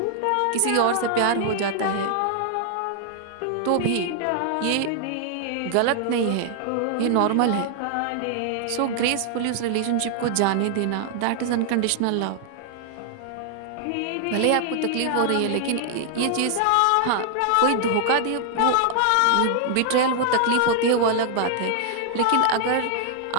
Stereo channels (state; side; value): different; both; correlation 0.00